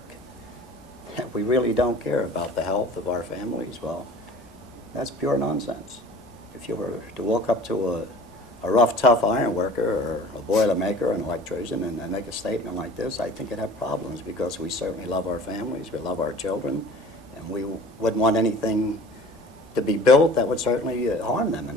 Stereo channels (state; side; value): normal; both; correlation 0.45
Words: We really don't care about the health of our families. Well, that's pure nonsense. If you were to walk up to a rough, tough iron worker or a boiler maker, an electrician, and make a statement like this, I think it'd have problems, because we certainly love our families, we love our children, and we wouldn't want anything to be built that would certainly harm them in